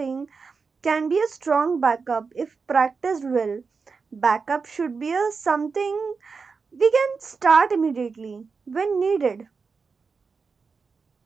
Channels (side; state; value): left; quieter; 5.0 dB